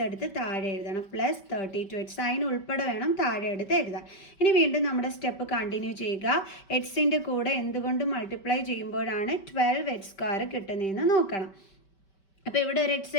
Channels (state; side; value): late; right; 5.2 ms